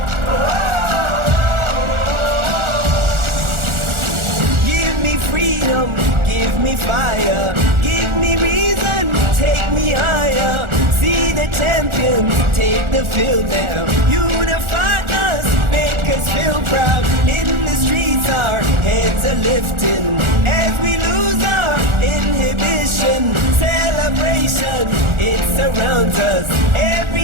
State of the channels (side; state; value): left; late; 1.4 ms